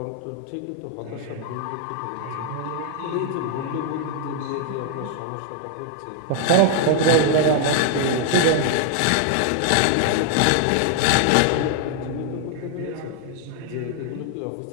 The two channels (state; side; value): different; both; correlation 0.00